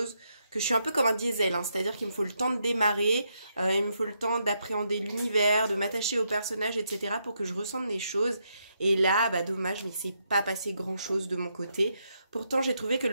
que je suis un peu comme un diesel, hein, c'est-à-dire qu'il me faut le temps de démarrer, il me faut le temps d'appréhender l'univers, de m'attacher aux personnages, etc. pour que je ressente des choses. Et là, bah dommage, mais c'est pas passé grand-chose de mon côté. Pourtant, j'ai trouvé que le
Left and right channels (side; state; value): both; inverted; correlation -0.80